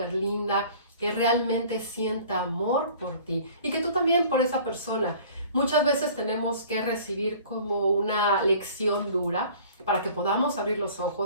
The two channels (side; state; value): both; inverted; correlation -0.48